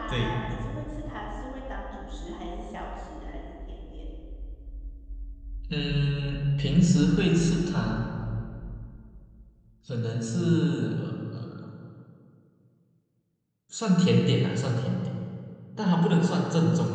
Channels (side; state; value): both; identical; correlation 1.00